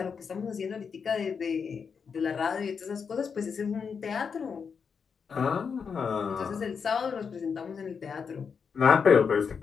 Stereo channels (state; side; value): quieter; right; 6.1 dB